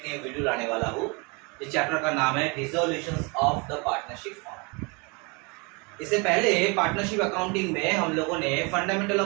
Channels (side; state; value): left; quieter; 30.2 dB